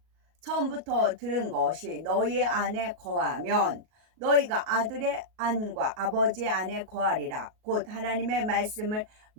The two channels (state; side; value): late; left; 38 ms